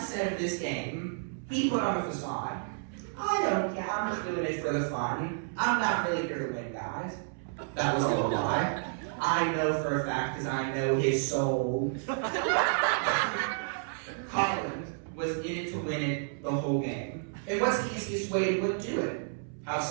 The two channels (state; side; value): silent; left; 57 dB below the other